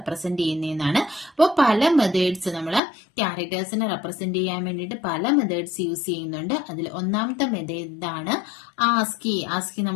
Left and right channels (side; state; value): right; drops out; at 2.8 s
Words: ചെയ്യുന്നതെന്നാണ്. അപ്പോൾ പല മെത്തേഡ്സ് നമ്മൾ ക്യാരക്ടേഴ്സിനെ റെപ്രസെന്റ് ചെയ്യാൻ വേണ്ടിയിട്ട് പല മെത്തേഡ്സ് യൂസ് ചെയ്യുന്നുണ്ട്. അതിൽ ഒന്നാമത്തെ മെത്തേഡാണ് ആസ്കി. ആസ്കി